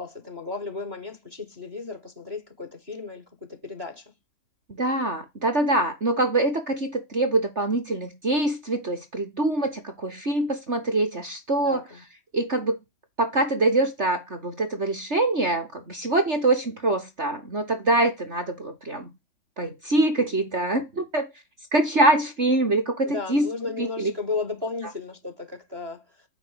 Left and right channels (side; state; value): left; late; 3.3 ms